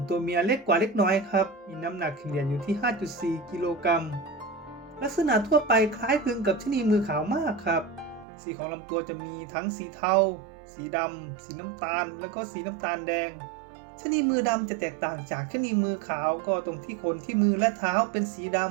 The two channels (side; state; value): left; drops out; at 8.2 s